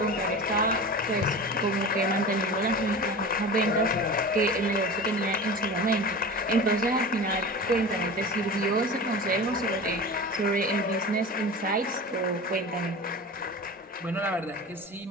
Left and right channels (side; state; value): both; normal; correlation 0.32